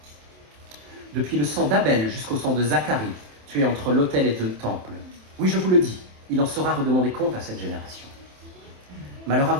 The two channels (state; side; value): late; left; 27 ms